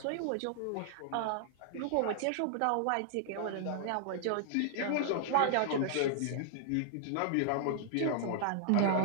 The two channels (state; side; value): different; both; correlation -0.01